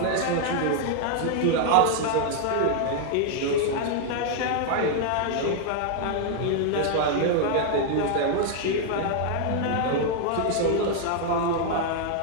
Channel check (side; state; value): both; different; correlation 0.00